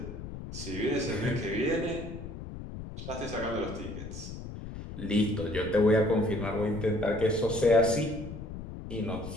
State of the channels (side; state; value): left; noise; rumble, 9 dB below the sound